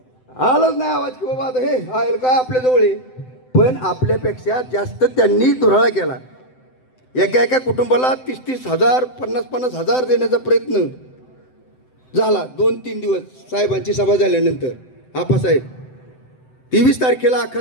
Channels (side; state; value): right; late; 7.8 ms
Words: आलाच नाही आवाज की बाबा आता हे आहे काय आपल्याजवळ आहे. पण आपल्यापेक्षा जास्त त्यांनी धुराळा केला. एका एका कुटुंबाला 30-30 हजार 50-50 हजार देण्याचा प्रयत्न झाला 2-3 दिवस साहेबांची सभा झाल्यानंतर. आप्पासाहेब 23 तारखेला अख्खा